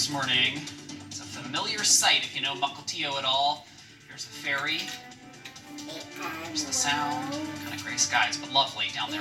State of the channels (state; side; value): identical; both; correlation 1.00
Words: morning. It's a familiar sight if you know Mukilteo at all. Here's the ferry. There's the sound. Kind of gray skies, but lovely down there